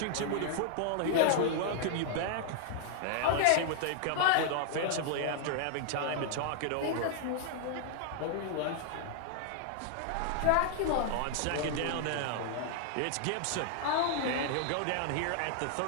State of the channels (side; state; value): both; different; correlation -0.01